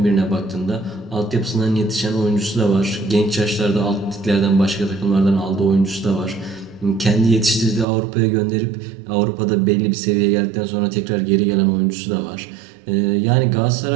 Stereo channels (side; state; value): left; drops out; at 7.9 s